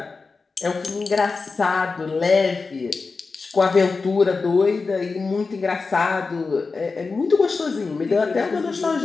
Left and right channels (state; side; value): quieter; right; 4.3 dB